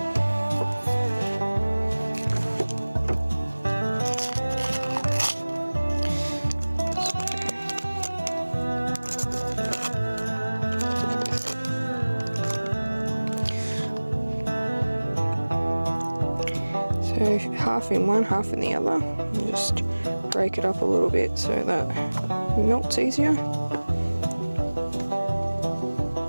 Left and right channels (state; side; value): inverted; both; correlation -1.00